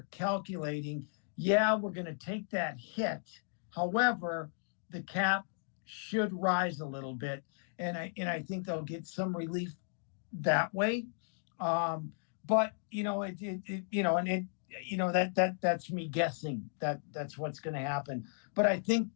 calculating, we're going to take that hit. However, the cap should rise a little bit, and I think they'll get some relief that way. But that's me guessing that's what's going to happen. But I think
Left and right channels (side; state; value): right; silent; digital silence